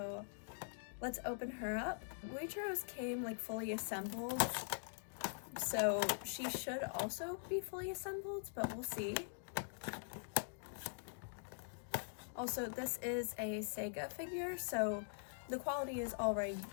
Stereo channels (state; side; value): silent; right; digital silence